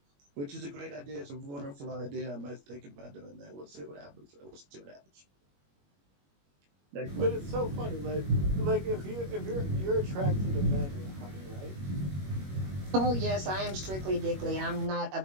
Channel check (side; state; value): left; late; 21 ms